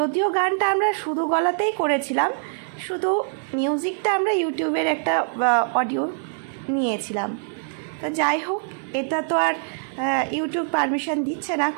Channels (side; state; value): left; silent; digital silence